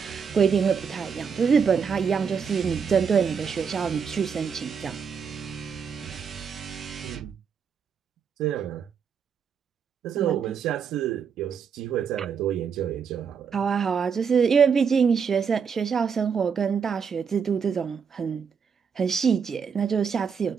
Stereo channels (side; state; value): left; quieter; 6.5 dB